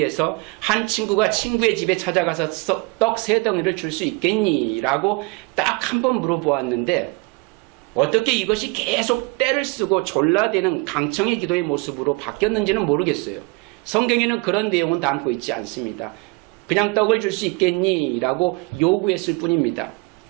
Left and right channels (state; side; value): quieter; left; 28.1 dB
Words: 한 친구가 친구의 집에 찾아가서 떡 3덩이를 줄 수 있겠니? 라고 딱 한 번 물어보았는데 어떻게 이것이 계속 때를 쓰고 졸라대는 강청의 기도의 모습으로 바뀌었는지는 모르겠어요. 성경에는 그런 내용은 담고 있지 않습니다. 그냥 떡을 줄 수 있겠니? 라고 요구했을 뿐입니다.